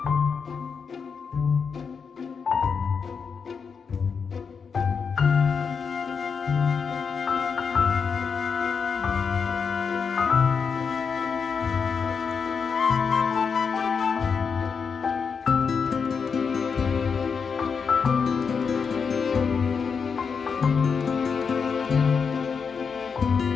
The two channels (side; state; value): right; quieter; 5.9 dB